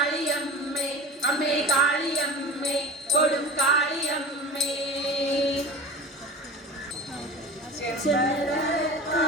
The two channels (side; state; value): both; normal; correlation 0.34